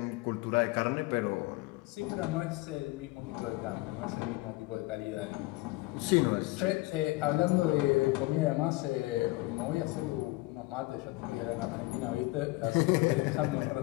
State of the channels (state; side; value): quieter; right; 21.6 dB